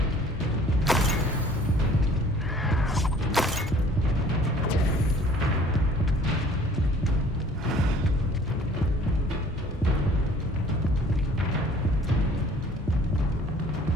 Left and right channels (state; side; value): normal; both; correlation 0.53